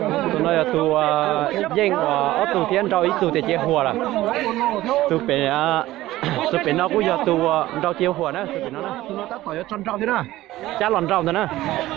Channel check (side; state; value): left; quieter; 16.2 dB